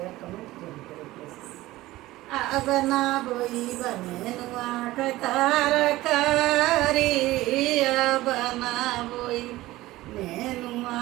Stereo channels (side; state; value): left; quieter; 17.5 dB